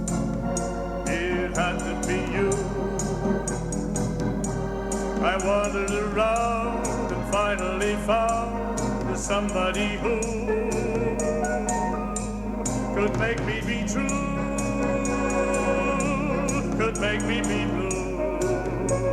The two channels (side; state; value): both; identical; correlation 1.00